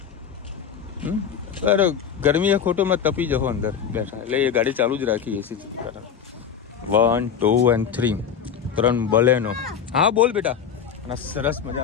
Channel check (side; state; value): right; quieter; 7.7 dB